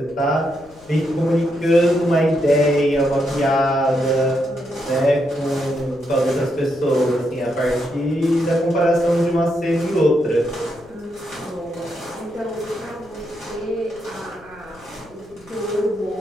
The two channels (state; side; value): noise; left; rumble, 25 dB below the sound